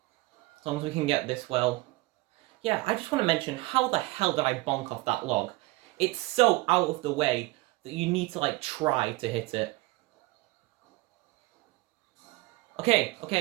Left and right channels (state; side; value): quieter; left; 21.2 dB